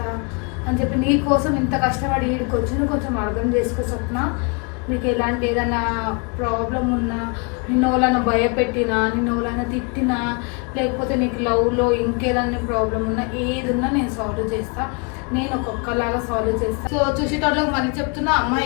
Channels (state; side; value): quieter; right; 33.5 dB